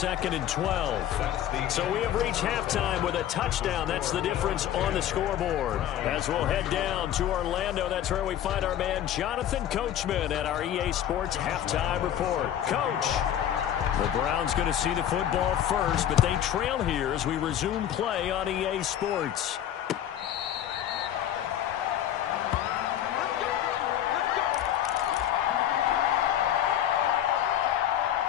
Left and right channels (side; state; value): right; quieter; 10.9 dB